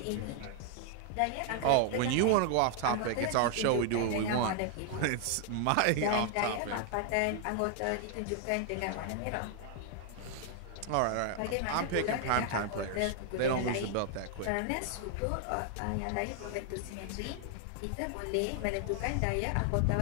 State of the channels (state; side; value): different; both; correlation 0.00